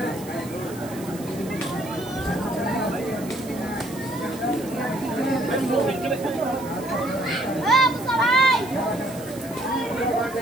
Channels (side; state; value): right; noise; hiss, 17 dB below the sound